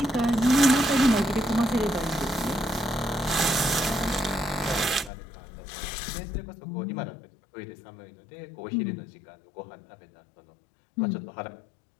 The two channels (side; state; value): right; drops out; at 5.1 s